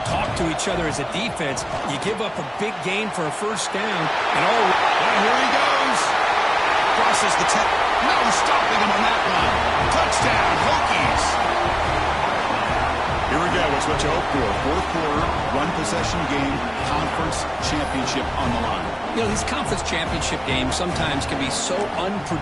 talk to each other as a defense. You give up a big gain for a first down, and here he goes. Crosses the 10. No stopping him on that one. Touchdown, Hokies. Here we go. It's what you hope for. Fourth quarter, one possession game, conference championship on the line. You know, these conference championship games sometimes can be so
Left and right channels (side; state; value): both; identical; correlation 1.00